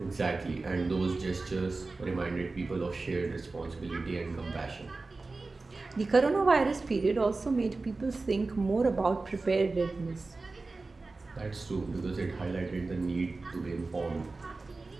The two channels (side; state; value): left; quieter; 3.6 dB